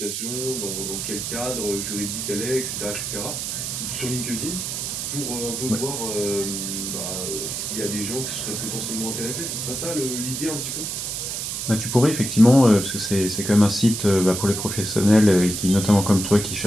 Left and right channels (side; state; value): right; noise; hiss, 4 dB below the sound